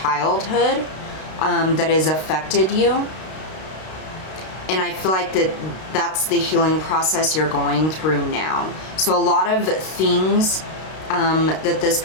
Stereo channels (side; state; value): right; late; 32 ms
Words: that has affected you, and I feel like that's the healing process you're going through now. So a lot of things that this